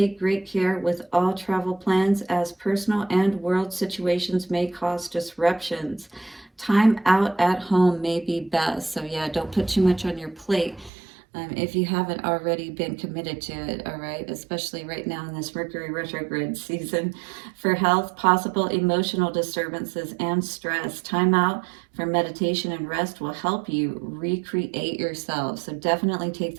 great care with all travel plans, as personal and world situations may cause disruptions. Time out at home may be best. So yeah, don't put too much on your plate if you haven't already been committed to it, all right? Especially right now in this Mercury retrograde season. For health, possible emotional disturbances and stress. Time out for meditation and rest will help you recreate yourself. So definitely take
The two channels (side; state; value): left; drops out; at 10.9 s